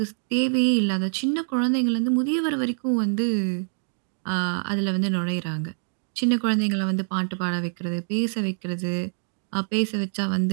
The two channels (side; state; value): left; silent; digital silence